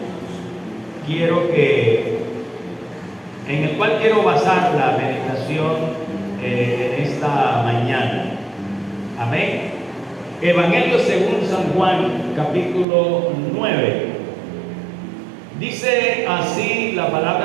quiero basar la meditación en esta mañana. Amén. Evangelio según San Juan capítulo 9. Dice así la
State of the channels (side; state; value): left; drops out; at 12.9 s